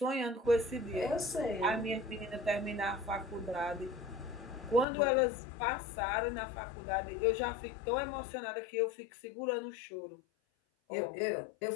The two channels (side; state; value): right; drops out; at 4.9 s